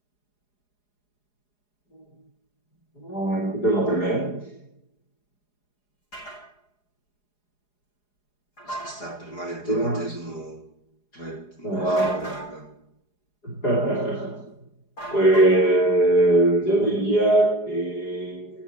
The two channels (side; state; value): right; late; 4.8 ms